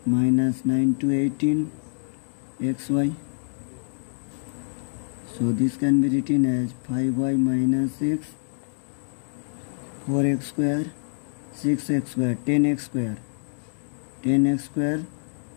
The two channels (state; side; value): silent; right; digital silence